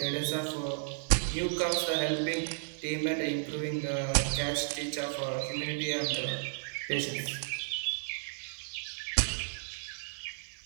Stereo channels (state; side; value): silent; left; digital silence